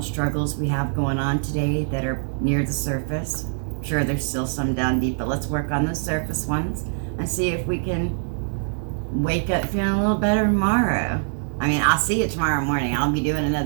we have going on today that are near the surface. Sure, there's still some down deep, but let's work on the surface ones and see if we can wake up feeling a little better tomorrow. I mean, I'll see you tomorrow morning. I'll be doing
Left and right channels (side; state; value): left; silent; digital silence